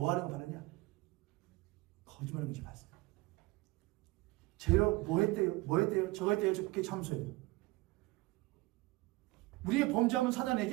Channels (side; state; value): left; quieter; 21.1 dB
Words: 하는 거 봤느냐? 거짓말하는 거 봤어요. 쟤요, 뭐 했대요? 저거 했대요. 그렇게 참소해요. 우리의 범죄하면